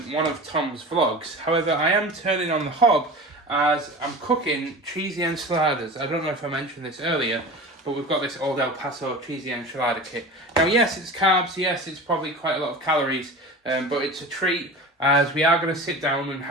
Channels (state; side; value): normal; both; correlation 0.34